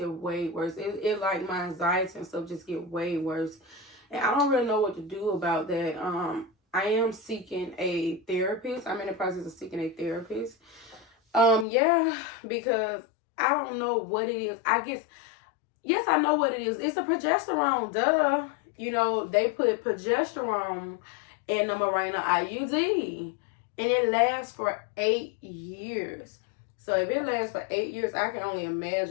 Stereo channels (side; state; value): right; drops out; at 11.7 s